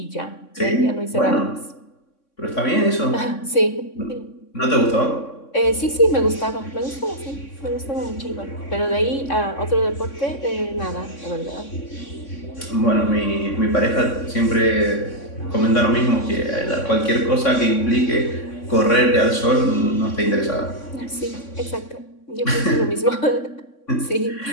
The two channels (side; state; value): right; late; 3.6 ms